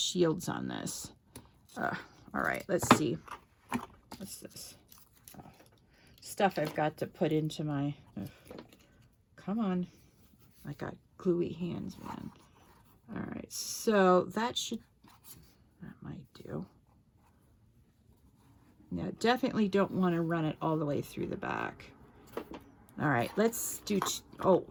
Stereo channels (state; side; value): identical; both; correlation 1.00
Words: on this. All right, let's see. What's this? Oh, stuff I've got to put into my... come on. I got gluey hands, man. All right, so that might do. Now, definitely don't want to run it all the way through the back. All right, let's do... oh,